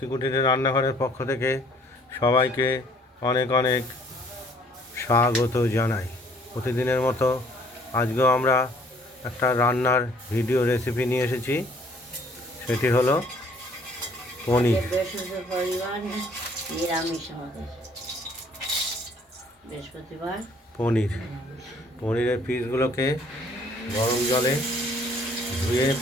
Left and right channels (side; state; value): both; normal; correlation 0.60